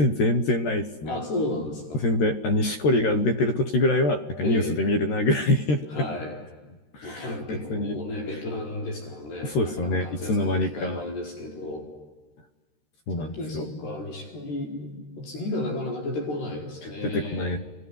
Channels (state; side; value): late; right; 13 ms